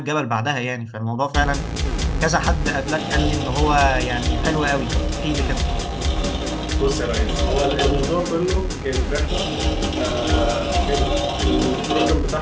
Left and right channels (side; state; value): both; identical; correlation 1.00